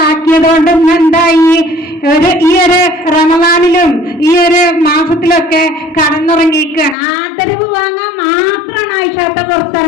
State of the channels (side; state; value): right; drops out; at 7.0 s